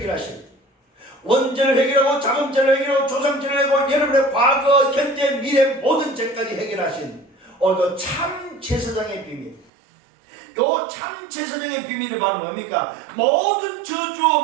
원죄를 해결하고 자금죄를 해결하고 조상죄를 해결하고 여러분의 과거, 현재, 미래 모든 죄까지 해결하신 오늘도 참 제사장의 비밀. 요 참 제사장의 비밀이 바로 뭡니까? 모든 저주,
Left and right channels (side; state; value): left; drops out; at 9.7 s